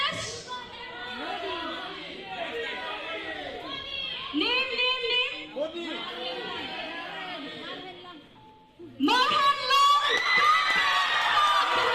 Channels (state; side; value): identical; both; correlation 1.00